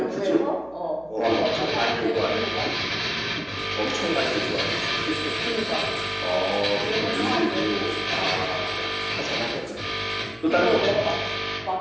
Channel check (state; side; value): noise; right; hum, 27 dB below the sound